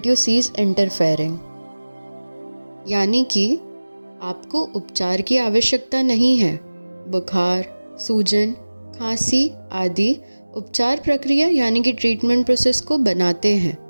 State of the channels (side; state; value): both; inverted; correlation -1.00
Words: you cease interfering. यानी कि आपको उपचार की आवश्यकता नहीं है। बुखार, सूजन, खांसी आदि उपचार प्रक्रिया यानी कि ट्रीटमेंट प्रोसेस को बनाते हैं।